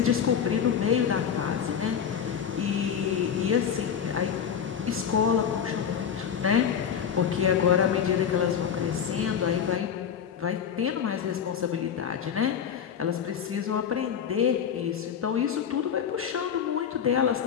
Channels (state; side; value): quieter; right; 7.9 dB